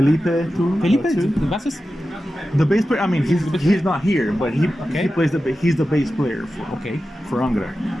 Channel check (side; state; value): both; normal; correlation 0.93